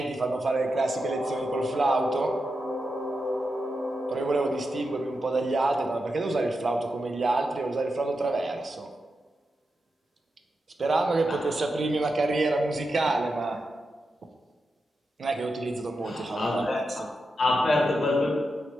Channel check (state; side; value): normal; both; correlation 0.88